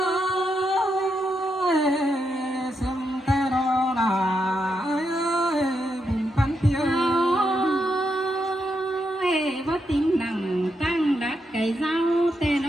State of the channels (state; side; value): normal; both; correlation 0.82